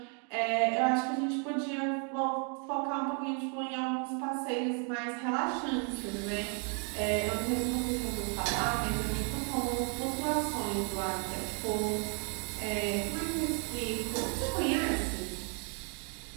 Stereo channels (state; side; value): quieter; left; 39.8 dB